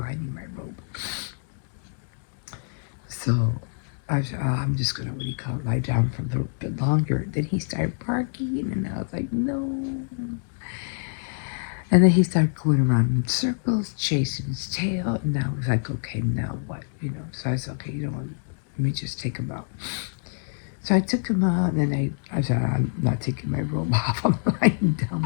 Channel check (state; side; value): silent; right; digital silence